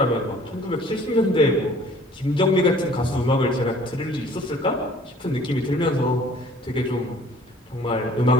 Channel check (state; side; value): normal; both; correlation 0.53